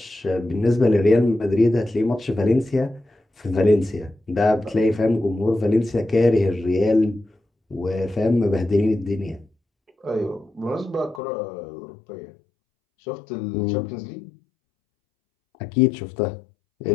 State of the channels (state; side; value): drops out; right; at 11.2 s